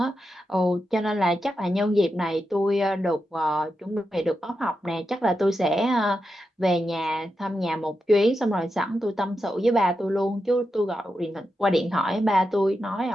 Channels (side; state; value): both; normal; correlation 0.88